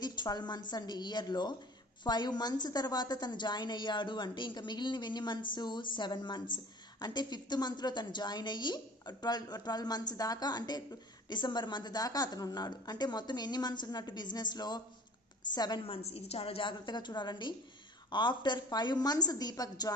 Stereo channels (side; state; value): both; normal; correlation 0.46